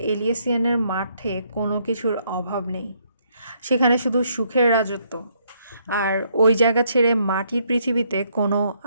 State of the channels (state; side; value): inverted; both; correlation -0.71